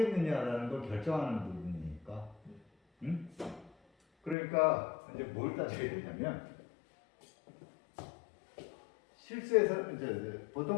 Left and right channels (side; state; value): right; drops out; at 4.4 s